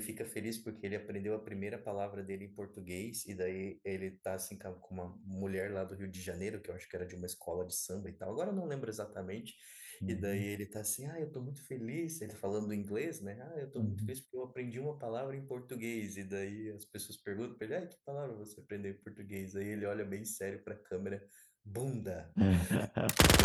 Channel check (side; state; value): both; identical; correlation 1.00